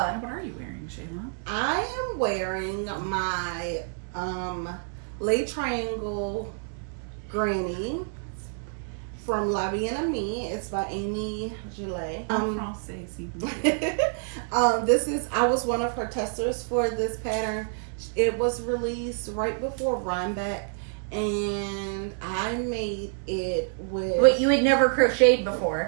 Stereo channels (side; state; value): left; silent; digital silence